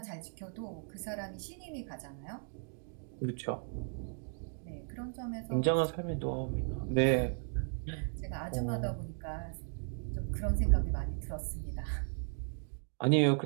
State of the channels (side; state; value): left; silent; 54 dB below the other